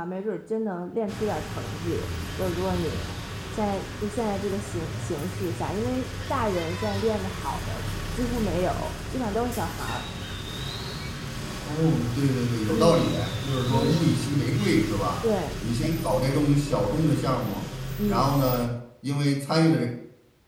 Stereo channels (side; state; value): both; identical; correlation 1.00